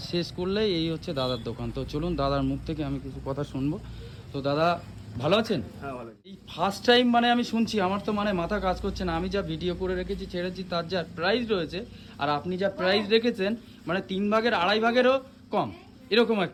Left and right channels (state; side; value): identical; both; correlation 1.00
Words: শেষ করলেই এই হচ্ছে দাদার দোকান। তো চলুন দাদার মুখ থেকে আমি কিছু কথা শুনবো। তো দাদা ভালো আছেন? হ্যাঁ ভালো। এই ফার্স্ট টাইম মানে আমি শুনছি, আমার তো মানে মাথা কাজ করছে না। আমি যা ভিডিও করে রেখেছি ছেড়েছি, তার যা প্রাইস রয়েছে আর আপনি যা প্রাইস রেখেছেন, মানে 3 ভাগের 2.5 ভাগেরও কম, এরকম